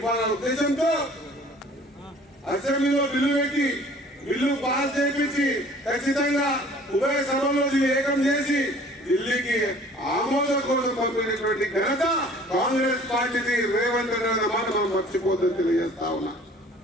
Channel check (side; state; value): both; normal; correlation 0.50